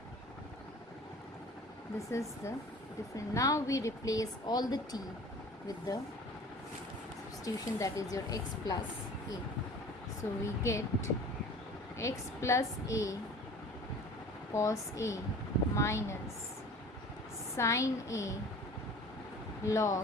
This is the difference. Now we replace all the t with the substitution, that is your x plus a. So we get x plus a cos A minus sin A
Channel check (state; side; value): normal; both; correlation 0.43